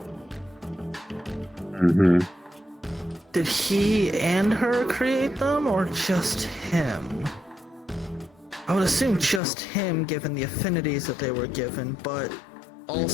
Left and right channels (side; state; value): right; drops out; at 9.4 s